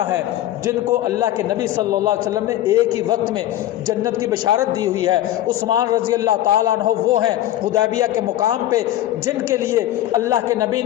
ہیں، جن کو اللہ کے نبی صلی اللہ علیہ وسلم نے ایک ہی وقت میں جنت کی بشارت دی ہوئی ہے، عثمان رضی اللہ تعالیٰ عنہ وہ ہیں حدیبیہ کے مقام پہ جن کے لیے اللہ کے نبی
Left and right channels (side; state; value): right; quieter; 13.5 dB